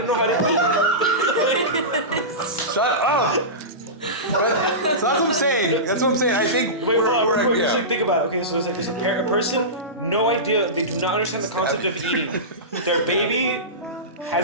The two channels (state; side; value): normal; both; correlation -0.19